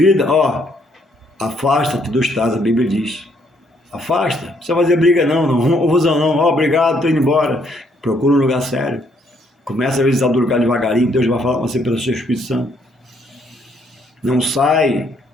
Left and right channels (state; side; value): normal; both; correlation 0.69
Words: afasta-te dos tais, a Bíblia diz. Afasta, não precisa fazer briga não confusão não, obrigado, estou indo embora. Procura um lugar sério, começa a visitar o lugar devagarinho, Deus vai falar com você pelo seu Espírito Santo. Não sai